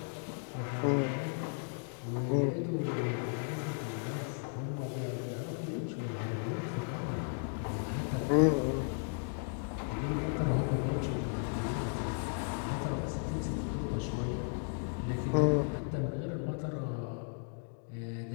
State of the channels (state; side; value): silent; right; 54 dB below the other